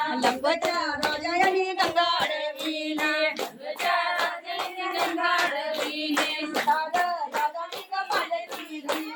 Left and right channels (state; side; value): identical; both; correlation 1.00